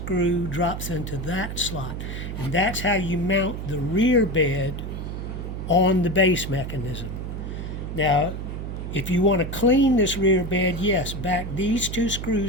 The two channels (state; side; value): noise; right; hum, 6 dB below the sound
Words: drops into that slot. And that's how you mount the rear bed on the base mechanism. Now, if you want to clean this rear bed, yes, back these 2